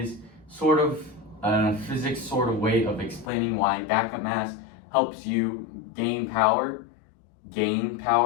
sort of a physics sort of way of explaining why backup mass helps you gain power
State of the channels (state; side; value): drops out; right; at 3.3 s